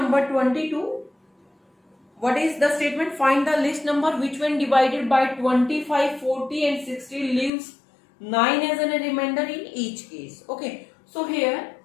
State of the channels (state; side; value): drops out; right; at 7.5 s